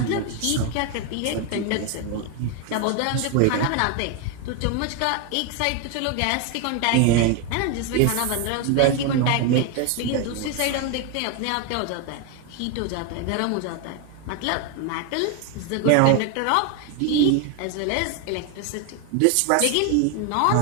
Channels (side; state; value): both; different; correlation 0.01